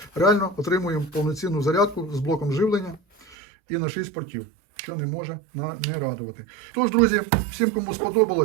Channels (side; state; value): left; drops out; at 3.4 s